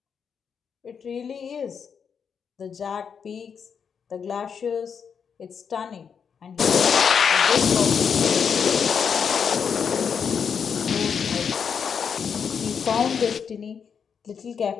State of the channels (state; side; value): quieter; right; 6.8 dB